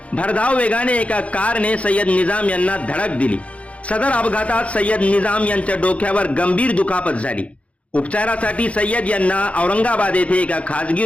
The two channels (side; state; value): right; late; 0.064 ms